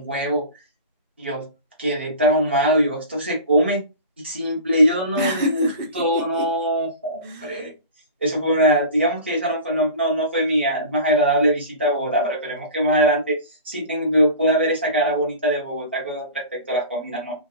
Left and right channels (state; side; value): inverted; both; correlation -0.36